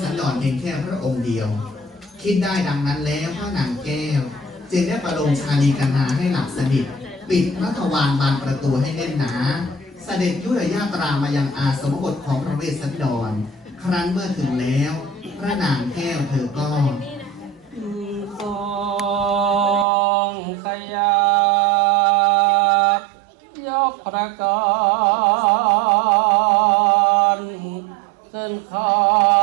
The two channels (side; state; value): left; drops out; at 19.9 s